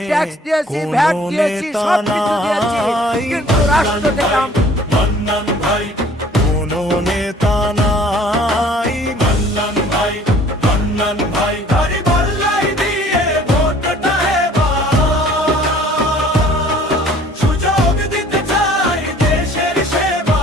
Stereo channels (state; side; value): normal; both; correlation 0.53